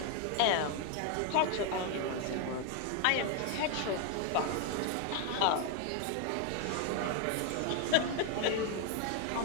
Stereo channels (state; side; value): different; both; correlation 0.00